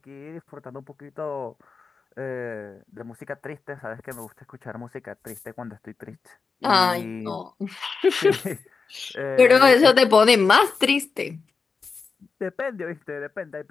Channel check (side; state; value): right; quieter; 4.8 dB